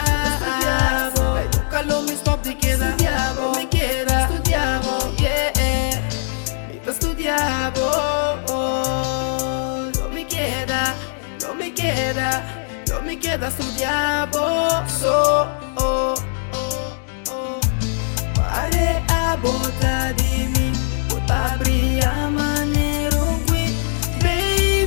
Estudiamo, nunca lo me stop de queda. Estudiamo, me queda. Estudiamo, estudiamo. No me queda estudiar Pare a bota de mim, bota brilha maneiro que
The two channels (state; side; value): silent; right; digital silence